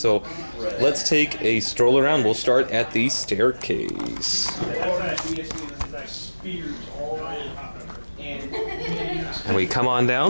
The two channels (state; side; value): inverted; both; correlation -1.00